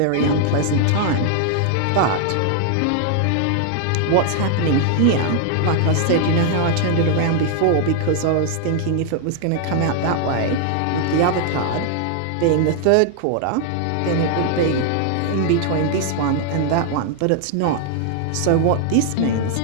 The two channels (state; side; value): different; both; correlation 0.00